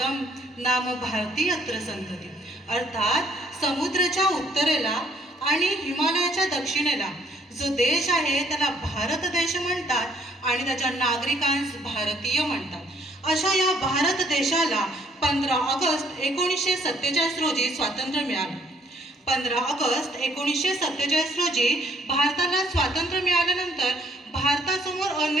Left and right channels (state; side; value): normal; both; correlation 0.64